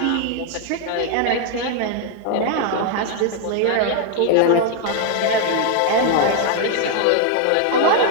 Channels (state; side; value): different; both; correlation 0.00